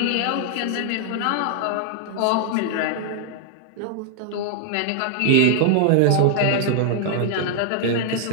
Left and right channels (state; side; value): different; both; correlation 0.00